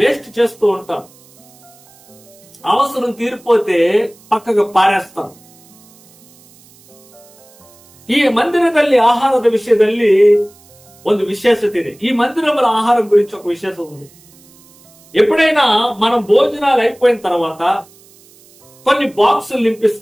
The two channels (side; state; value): right; noise; hiss, 27 dB below the sound